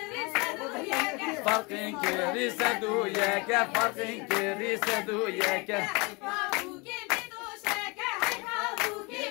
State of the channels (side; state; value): right; quieter; 28.0 dB